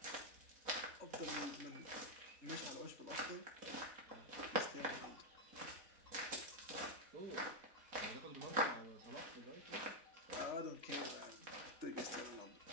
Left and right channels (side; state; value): left; late; 4.1 ms